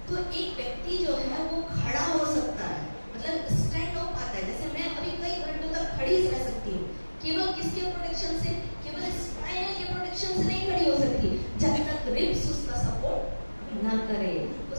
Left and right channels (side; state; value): both; inverted; correlation -1.00